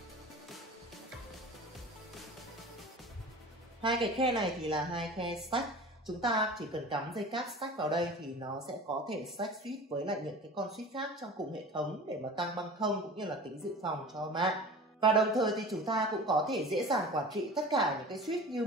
Hai cái khe này thì là hai khe stack. Chúng ta chỉ cần cắm dây cáp stack vào đây thì nó sẽ có thể stack switch với lại những cái con switch khác trong cùng hệ thống để mà tăng băng thông cũng như là tính dự phòng cho mạng. Và đồng thời thì chúng ta cũng có thể dễ dàng quản trị tất cả những cái switch như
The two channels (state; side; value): normal; both; correlation 0.38